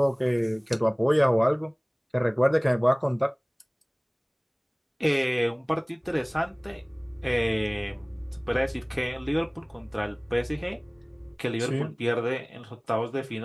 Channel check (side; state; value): both; identical; correlation 1.00